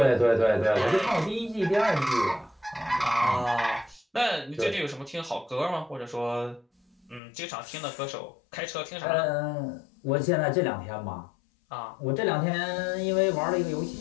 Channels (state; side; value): drops out; right; at 7.2 s